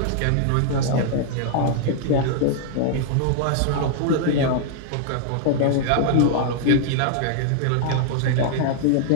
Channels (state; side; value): different; both; correlation -0.01